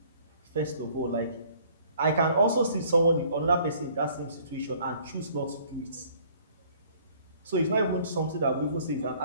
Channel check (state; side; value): inverted; both; correlation -0.57